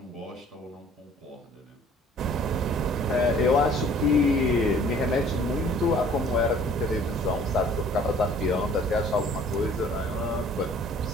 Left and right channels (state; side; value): normal; both; correlation 0.53